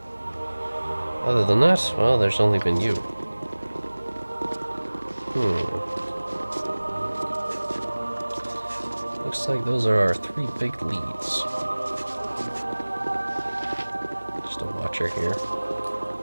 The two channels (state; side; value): inverted; both; correlation -1.00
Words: Other than that, well, there's only been you. Looks like those are our 3 big leads. Just a watcher here.